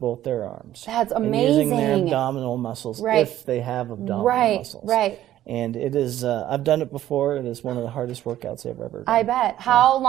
their arms. That's amazing. And using their abdominal muscles if they have abdominal muscles. Right. And it is, I've done it before. It is one of the hardest workouts I've ever done. I bet. How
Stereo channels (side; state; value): left; quieter; 12.9 dB